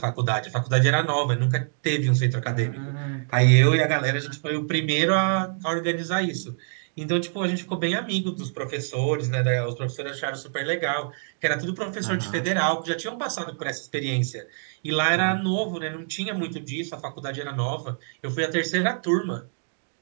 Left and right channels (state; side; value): silent; left; digital silence